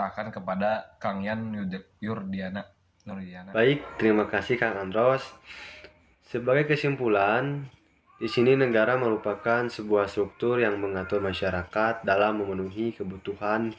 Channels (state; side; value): identical; both; correlation 1.00